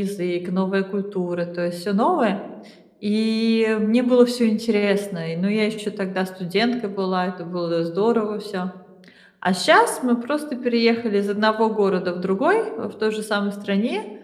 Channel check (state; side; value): identical; both; correlation 1.00